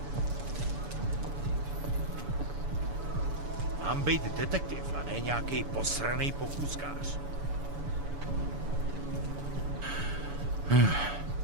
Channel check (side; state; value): left; late; 7.0 ms